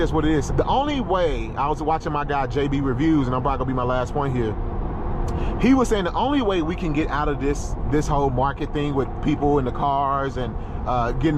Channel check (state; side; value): identical; both; correlation 1.00